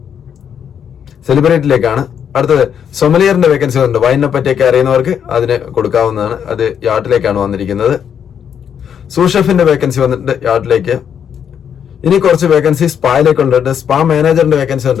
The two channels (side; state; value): right; quieter; 8.2 dB